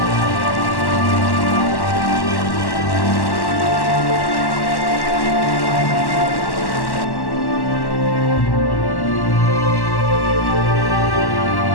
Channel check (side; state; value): right; late; 1.1 ms